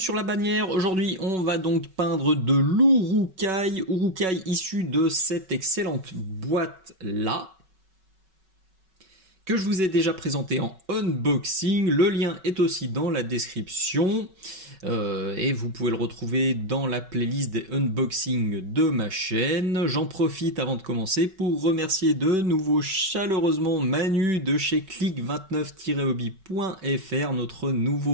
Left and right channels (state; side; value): late; left; 5.3 ms